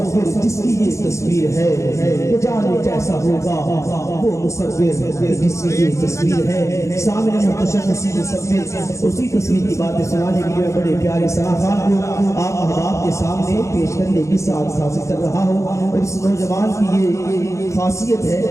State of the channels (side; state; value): right; late; 0.14 ms